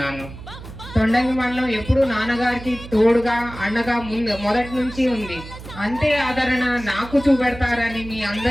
తొండంగి మండలం ఎప్పుడు నాన్నగారికి తోడుగా, అండగా మొదటి నుంచి ఉంది. అంతే ఆదరణ నాకు చూపెడతారని మీ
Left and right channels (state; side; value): noise; right; hum, 14 dB below the sound